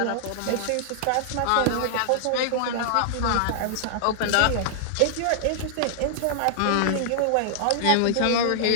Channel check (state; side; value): different; both; correlation -0.01